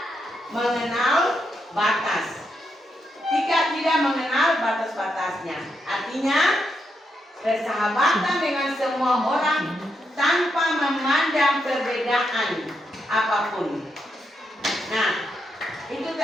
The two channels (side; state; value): both; normal; correlation 0.82